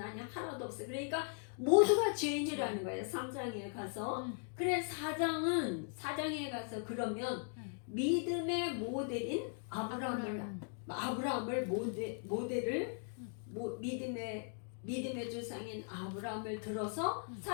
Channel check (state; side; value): silent; right; 52 dB below the other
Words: 하나도 없어. 그러니까 모두가 죄인이라는 거예요. 3장에 가서. 그래 4장에 가서 그러면 믿음의 모델인 아브라함을 모델을 믿음의 조상인 아브라함을 들어서